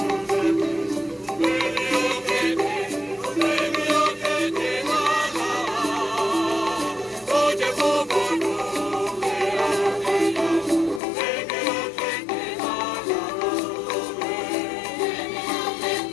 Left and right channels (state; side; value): drops out; right; at 11.0 s